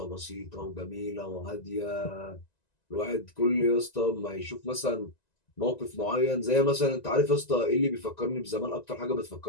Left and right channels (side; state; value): right; late; 1.9 ms